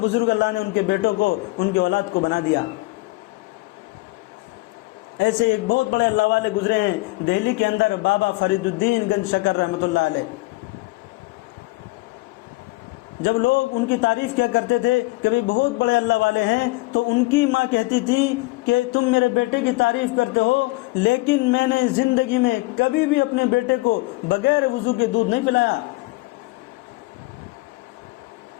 بزرگ اللہ نے ان کے بیٹوں کو ان کے اولاد کو بنا دیا. ایسے ایک بہت بڑے اللہ والے گزرے ہیں دہلی کے اندر, بابا فرید الدین گنج شکر رحمۃ اللہ علیہ. جب لوگ ان کی تعریف کیا کرتے تھے کہ بھئی بہت بڑے اللہ والے ہیں, تو ان کی ماں کہتی تھی کہ تم میرے بیٹے کی تعریف کرتے ہو, لیکن میں نے زندگی میں کبھی بھی اپنے بیٹے کو بغیر وضو کے دودھ نہیں پلایا.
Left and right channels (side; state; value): right; quieter; 22.1 dB